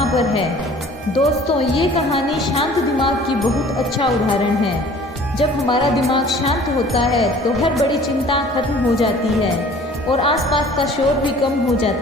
पर है। दोस्तों, ये कहानी शांत दिमाग की बहुत अच्छा उदाहरण है। जब हमारा दिमाग शांत होता है तो हर बड़ी चिंता खत्म हो जाती है और आसपास का शोर भी कम हो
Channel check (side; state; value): both; normal; correlation 0.49